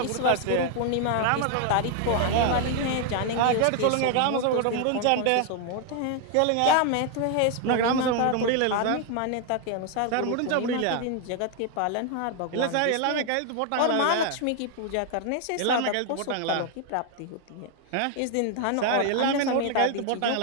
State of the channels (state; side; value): different; both; correlation 0.00